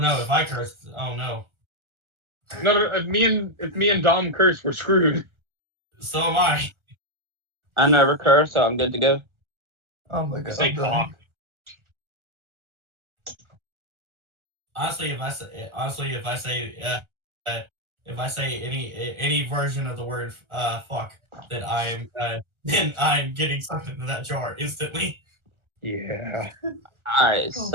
if I curse, oh no. No, if me and Dom curse, we're screwed. So am I. I never curse, so I'm good to go. Oh my god. Say cock. Honestly, if I say any version of the word fuck, then I'm getting sucked into that jar instantly. Yeah. Alright,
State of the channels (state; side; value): late; left; 1.3 ms